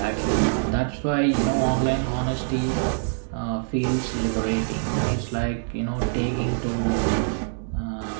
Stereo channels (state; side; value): silent; left; digital silence